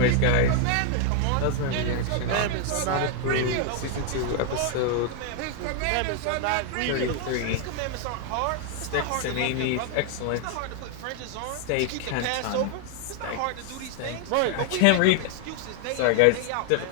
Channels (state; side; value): different; both; correlation 0.00